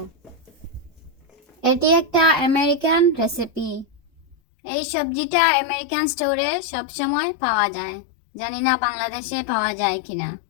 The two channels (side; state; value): right; drops out; at 4.4 s